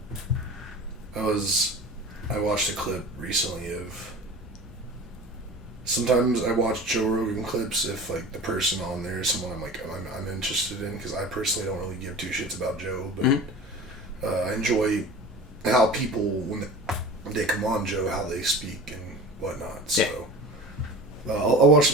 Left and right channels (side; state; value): both; normal; correlation 0.37